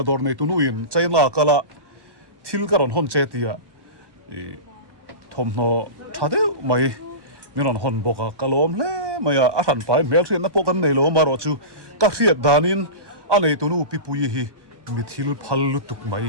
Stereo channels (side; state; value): left; late; 1.2 ms